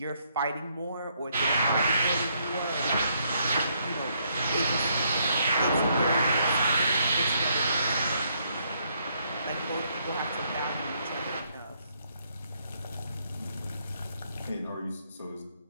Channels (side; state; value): both; inverted; correlation -0.72